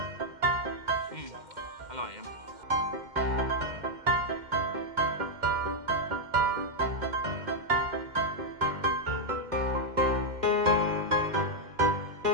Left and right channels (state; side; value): late; left; 2.1 ms